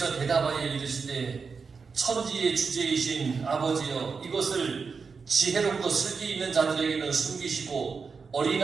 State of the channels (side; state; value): left; quieter; 5.2 dB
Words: 대답하여 이르시되 천지의 주제이신 아버지여 이것을 지혜롭고 슬기 있는 자들에게는 숨기시고